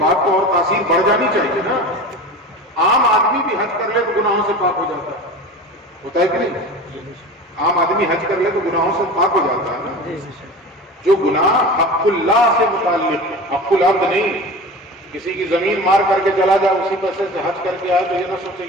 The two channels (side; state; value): both; normal; correlation 0.33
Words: تو اور تاثیر بڑھ جانی چاہیے نا۔ عام آدمی بھی حج کر لے تو گناہوں سے پاک ہو جاتا ہے، ہوتا ہے کہ نہیں؟ عام آدمی حج کر لے تو گناہوں سے پاک ہو جاتا ہے نا۔ جو گناہ حق اللہ سے متعلق، حق العبد نہیں، کسی کی زمین مار کر کے چلا جائے اسی پیسے سے حج کر کے آئے تو یہ نہ سوچے